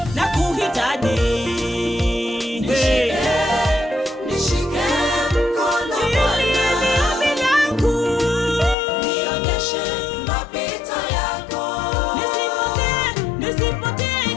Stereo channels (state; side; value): drops out; right; at 8.8 s